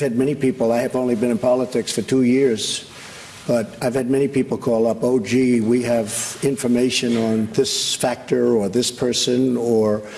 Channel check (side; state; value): both; identical; correlation 1.00